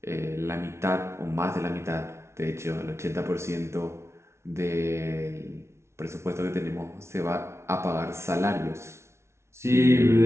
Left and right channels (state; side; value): late; left; 0.13 ms